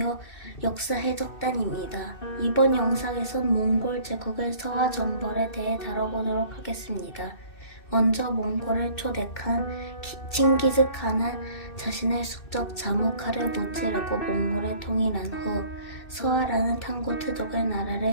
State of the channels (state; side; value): late; right; 2.6 ms